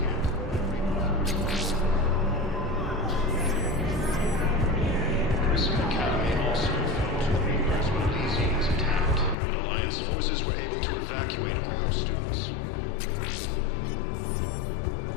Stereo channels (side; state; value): right; drops out; at 9.3 s